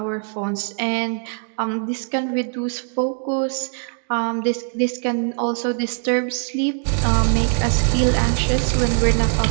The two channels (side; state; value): left; silent; 64 dB below the other